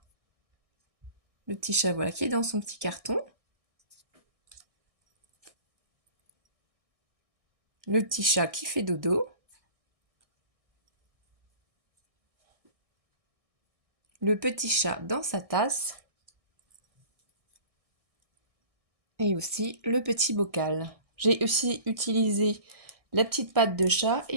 Le petit chat, voilà, qui est dans son petit carton. Le petit chat qui fait dodo. Le petit chat dans sa tasse. Et aussi le petit bocal. J'ai aussi utilisé la petite patte de chat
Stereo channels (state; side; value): late; left; 1.6 ms